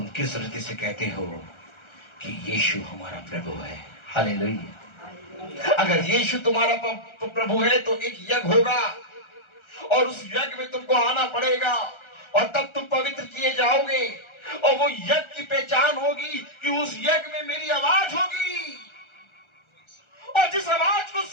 किस रीति से कहते हो कि यीशु हमारा प्रभु है? हालेलुया। अगर यीशु तुम्हारा प्रभु है तो एक यज्ञ होगा और उस यज्ञ में तुमको आना पड़ेगा और तब तुम पवित्र किए जाओगे। और वो यज्ञ की पहचान होगी कि उस यज्ञ में मेरी आवाज होगी, और जिस आवाज को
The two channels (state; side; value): late; right; 1.3 ms